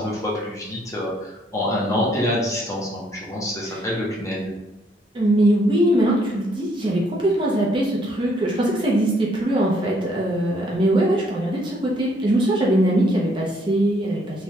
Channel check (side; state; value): both; normal; correlation 0.68